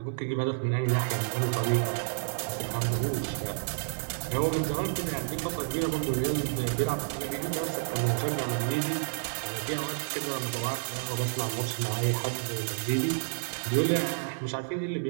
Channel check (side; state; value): left; silent; 58 dB below the other